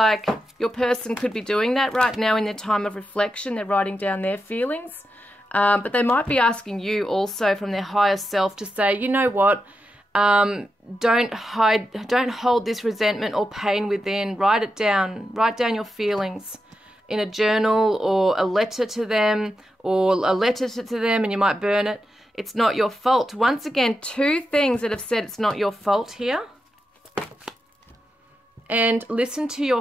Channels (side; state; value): both; normal; correlation 0.88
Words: your person could be doing that right now in their time of reflection. They're writing down their feelings. But they might be asking you also from their higher self to say, you know what, don't hold this resentment or pain within. Write it down. Write down your feelings in a journal, or a letter to them, and you might burn it. It's not your fault. Once again, two things that have said it's not your fault here. And listen to